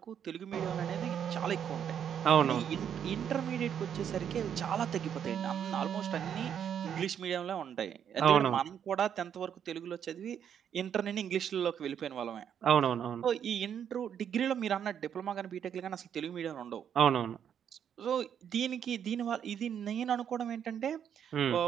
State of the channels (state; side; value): quieter; left; 8.7 dB